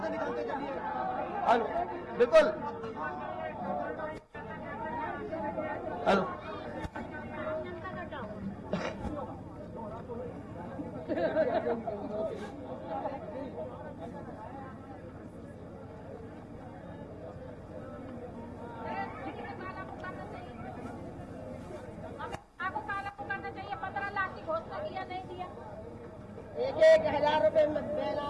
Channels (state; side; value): identical; both; correlation 1.00